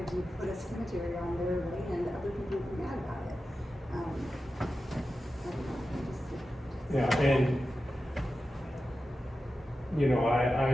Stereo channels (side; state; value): both; normal; correlation 0.92